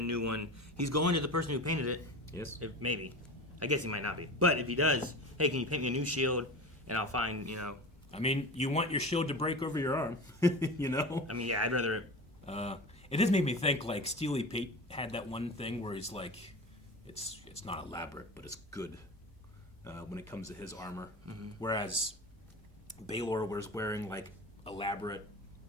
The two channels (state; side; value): normal; both; correlation 0.31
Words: one. He's going to the person who painted it. Yes. Maybe. I guess he might not be. But if he does, hey, can you paint me a new shield? And I'll find, you know. I mean, you want your shield to break over your arm, you know? I mean, yeah, I'd rather... It does make me think, like, Steely Pete had that one thing where he's like, it's not elaborate, but it's good when it comes to his armor. Mm-hmm. Whereas Baelor was wearing, like, elaborate